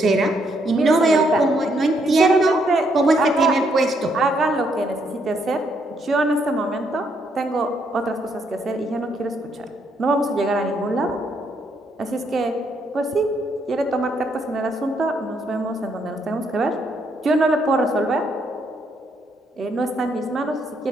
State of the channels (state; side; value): normal; both; correlation 0.74